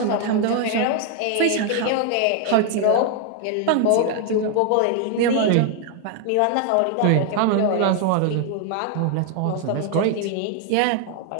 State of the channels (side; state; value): both; different; correlation 0.00